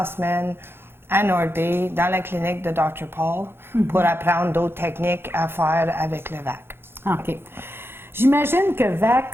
semaine à North Bay, dans la clinique de Dr. Paul, pour apprendre d'autres techniques à faire avec le VAC. OK. J'imagine que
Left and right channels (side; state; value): left; late; 0.11 ms